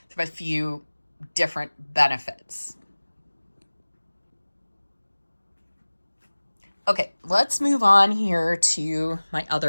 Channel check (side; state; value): both; inverted; correlation -1.00